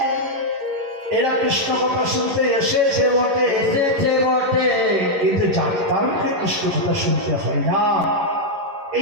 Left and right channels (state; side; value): late; left; 11 ms